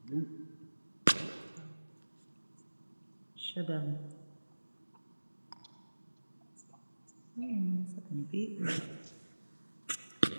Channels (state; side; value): inverted; both; correlation -1.00